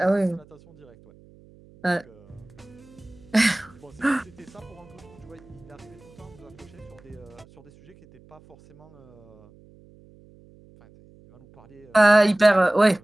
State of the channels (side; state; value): right; noise; hum, 25 dB below the sound